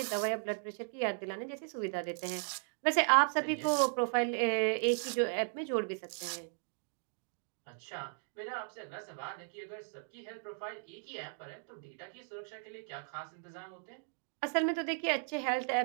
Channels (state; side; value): silent; left; digital silence